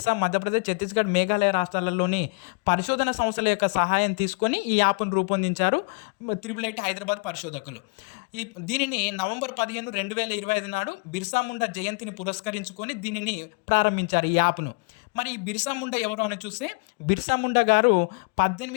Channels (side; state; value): right; quieter; 33.6 dB